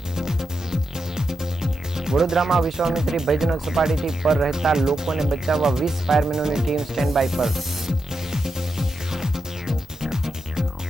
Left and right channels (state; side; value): normal; both; correlation 0.86